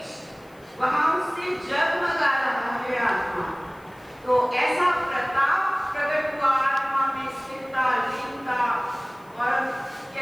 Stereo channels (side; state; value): left; noise; hiss, 30 dB below the sound